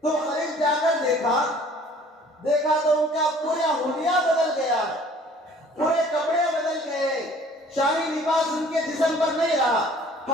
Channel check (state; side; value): normal; both; correlation 0.53